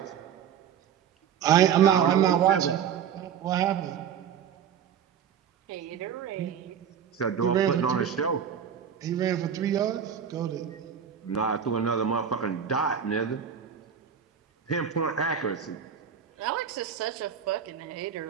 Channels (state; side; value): quieter; left; 8.2 dB